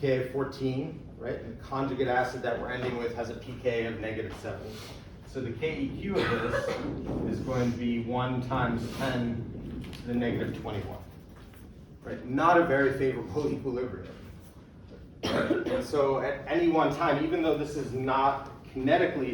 of 14, right? And the conjugate acid that we're ending with has a pK of -7. So the KEQ of this is going to be 1 times 10 to the -21. Right? Not a very favorable equilibrium. And so at any one time, even though this is not kinetically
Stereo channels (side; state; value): both; identical; correlation 1.00